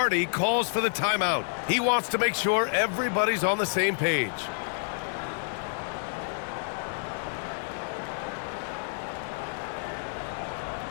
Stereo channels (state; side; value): silent; right; digital silence